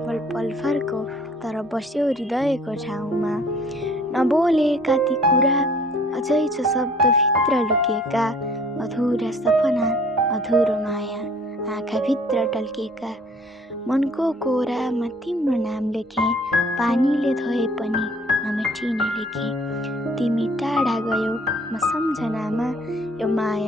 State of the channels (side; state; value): both; normal; correlation 0.55